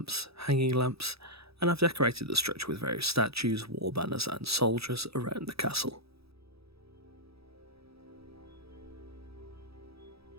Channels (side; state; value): left; late; 0.77 ms